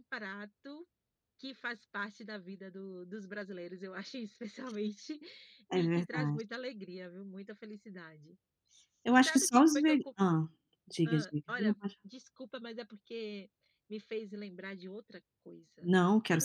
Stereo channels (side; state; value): both; identical; correlation 1.00